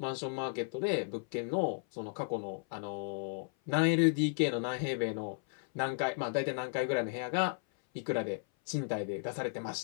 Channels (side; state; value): right; silent; 55 dB below the other